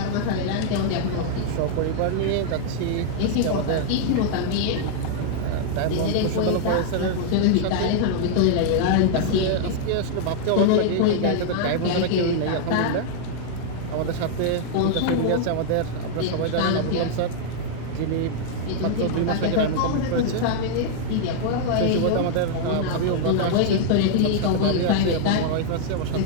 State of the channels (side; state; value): both; different; correlation -0.01